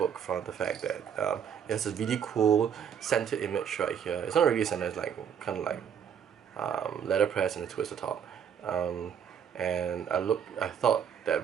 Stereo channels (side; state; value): left; quieter; 8.1 dB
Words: from the fact that it has a really cool centered image right here. It's not really centered, it's like kind of like letterpress and a twist at the top. And I thought that